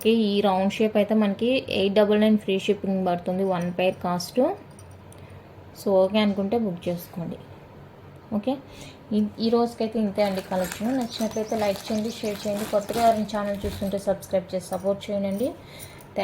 ఈ రౌండ్ షేప్ అయితే మనకి 899 ఫ్రీ షిప్పింగ్ పడుతుంది, 1 పేర్ కాస్ట్. సో ఓకే అనుకుంటే బుక్ చేసుకోండి. ఓకే, ఈ రోజుకైతే ఇంతే అండి కలెక్షన్. నచ్చినట్లయితే లైక్ చేయండి, షేర్ చేయండి. కొత్తగా ఎవరైనా ఛానల్ చూస్తుంటే సబ్స్క్రైబ్ చేసి సపోర్ట్ చేయండి.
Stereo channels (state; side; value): identical; both; correlation 1.00